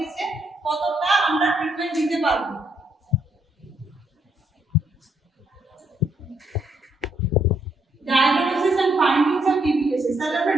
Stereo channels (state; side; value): normal; both; correlation 0.73